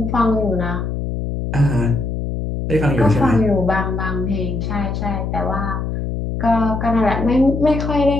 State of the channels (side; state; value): left; noise; hum, 3 dB below the sound